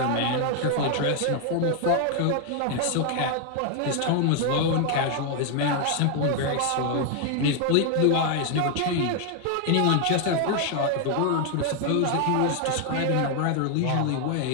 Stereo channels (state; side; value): different; both; correlation 0.00